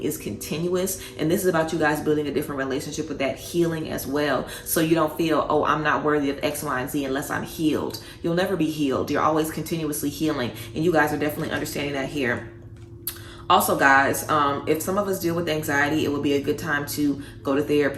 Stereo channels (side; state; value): both; identical; correlation 1.00